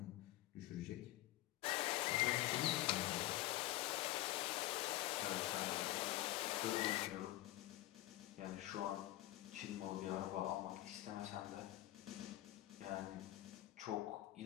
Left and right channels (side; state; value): right; quieter; 16.6 dB